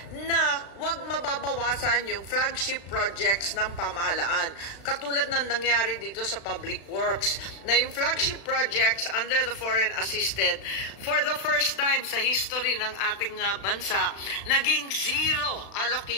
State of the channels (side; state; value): right; late; 36 ms